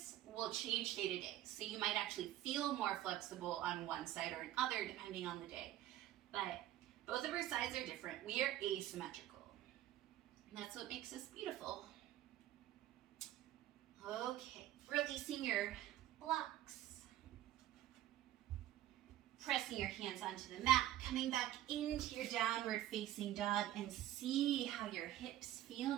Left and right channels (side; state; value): left; quieter; 13.5 dB